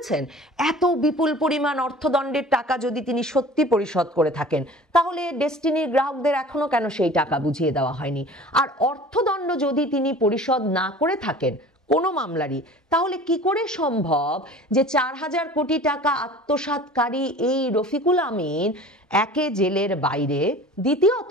এত বিপুল পরিমাণ অর্থদণ্ডের টাকা যদি তিনি সত্যি পরিশোধ করে থাকেন তাহলে ডেস্টিনির গ্রাহকদের এখনো কেন সেই টাকা বুঝিয়ে দেওয়া হয়নি? আর অর্থদণ্ড যদি তিনি পরিশোধ না করে থাকেন কোনো মামলারই, তাহলে কি করে সম্ভব যে ৪,০০০ কোটি টাকা আত্মসাৎকারী এই রফিকুল আমিন একে জেলের বাইরে,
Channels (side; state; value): both; normal; correlation 0.43